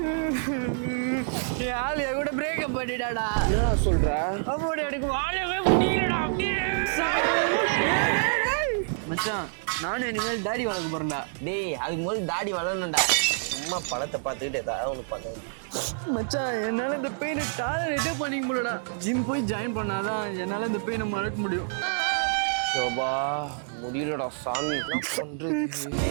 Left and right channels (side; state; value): left; silent; 60 dB below the other